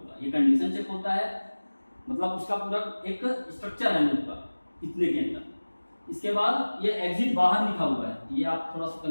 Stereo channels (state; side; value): inverted; both; correlation -1.00